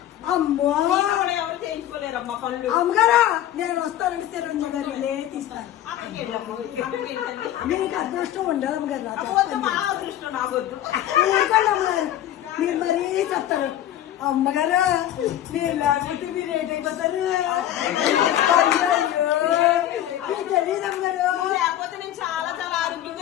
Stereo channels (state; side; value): quieter; right; 12.2 dB